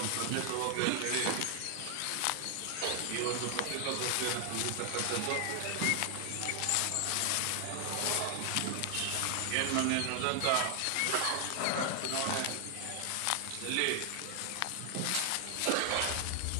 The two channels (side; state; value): both; different; correlation 0.00